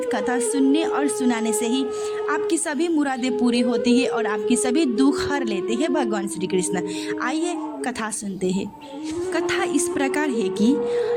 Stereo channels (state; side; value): identical; both; correlation 1.00